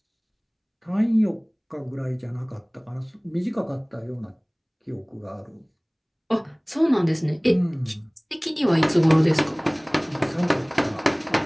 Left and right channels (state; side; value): identical; both; correlation 1.00